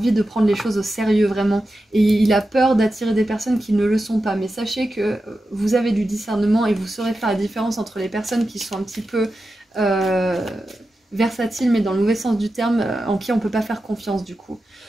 de prendre les choses au sérieux vraiment, et il a peur d'attirer des personnes qui ne le sont pas. Mais sachez que vous avez du discernement et vous saurez faire la différence entre les personnes qui sont un petit peu versatiles, mais dans le mauvais sens du terme, en qui on ne peut pas faire confiance du coup.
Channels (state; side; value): normal; both; correlation 0.91